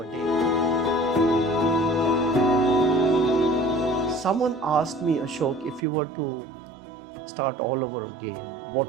day. Someone asked me, Ashok, if you were to start all over again,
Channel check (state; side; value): drops out; left; at 5.9 s